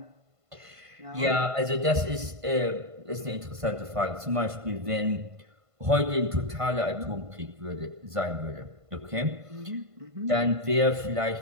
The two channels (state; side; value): late; left; 1.5 ms